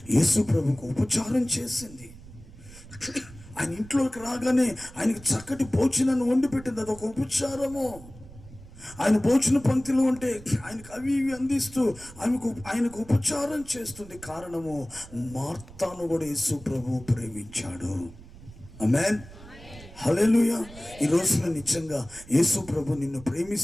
యేసు ప్రభుకు ఉపచారం చేసింది. ఆయన ఇంట్లోకి రాగానే ఆయనకి చక్కటి భోజనాన్ని వండి పెట్టింది. అదొక ఉపచారము. ఆయన భోజన పంక్తిలో ఉంటే ఆయనకు అవి ఇవి అందిస్తూ ఆయనకు ఉపచారం చేస్తుంది. కారణము మార్తాను కూడా యేసు ప్రభు ప్రేమించాడు. ఆమేన్, హల్లెలూయా. ఈ రోజున నిజంగా యేసు ప్రభు నిన్ను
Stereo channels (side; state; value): right; noise; rumble, 19 dB below the sound